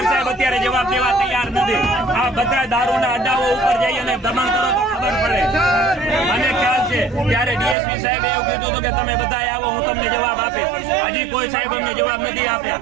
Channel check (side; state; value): left; drops out; at 7.8 s